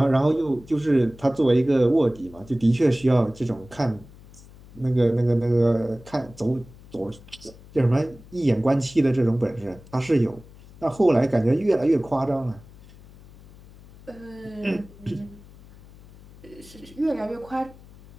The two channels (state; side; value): noise; left; hum, 22 dB below the sound